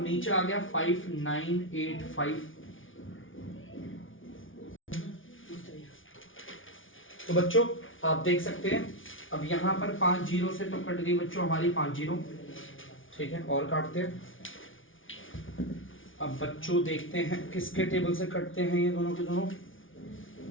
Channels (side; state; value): right; late; 0.57 ms